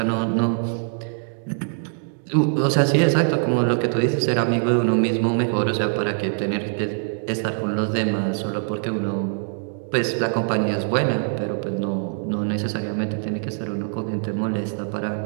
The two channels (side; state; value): left; silent; digital silence